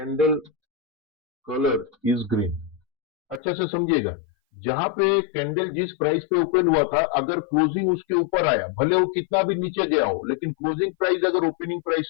colour is green. अच्छा से समझिएगा, जहां पे कैंडल जिस प्राइस पे ओपन हुआ था, अगर क्लोजिंग उसके ऊपर आया, भले वो कितना भी नीचे गया हो, लेकिन क्लोजिंग प्राइस अगर ओपनिंग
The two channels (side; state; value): right; drops out; at 3.4 s